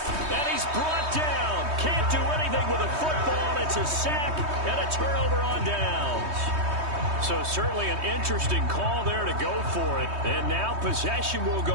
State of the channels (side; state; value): left; late; 3.2 ms